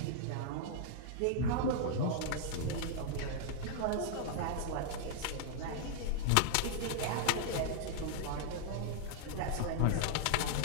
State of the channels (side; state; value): both; different; correlation -0.01